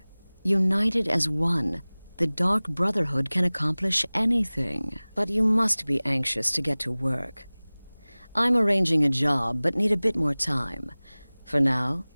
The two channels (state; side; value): inverted; both; correlation -1.00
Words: united as one, the Dark Brotherhood can accomplish anything. But you must be anxious to get to work. I'm arranging a job, but need a bit more time. For now,